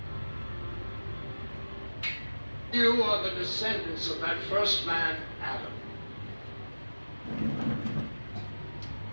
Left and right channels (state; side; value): inverted; both; correlation -1.00